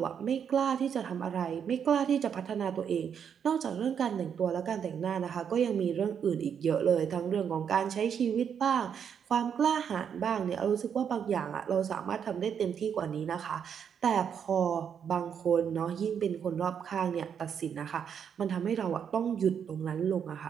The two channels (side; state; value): left; quieter; 7.8 dB